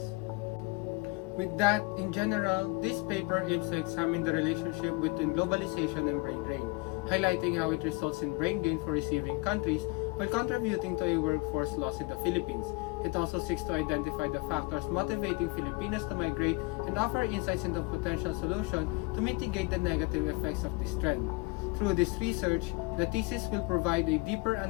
With that, in general, this paper aims to examine the relationship between globalization and brain drain, highlighting how it results in brain gain for receiving countries while contributing to a workforce loss in the Philippines. It also seeks to identify the factors motivating Filipinos to migrate and offer insights into potential solutions to mitigate the negative effects of this trend. Through this research, the thesis will provide a deeper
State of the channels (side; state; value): right; quieter; 26.6 dB